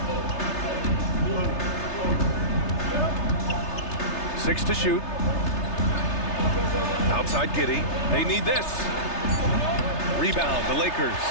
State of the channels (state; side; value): late; right; 3.3 ms